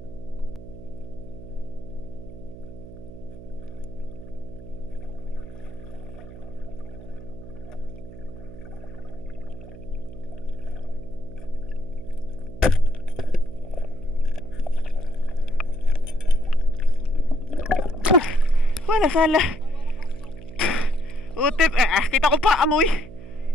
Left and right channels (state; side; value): noise; right; hum, 15 dB below the sound